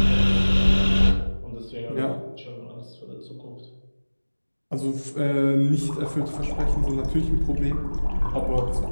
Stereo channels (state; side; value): inverted; both; correlation -1.00